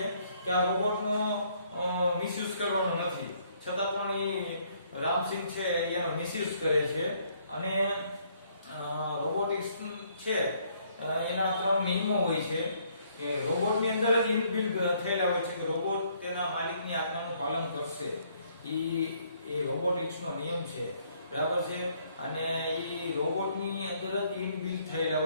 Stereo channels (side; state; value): both; inverted; correlation -0.66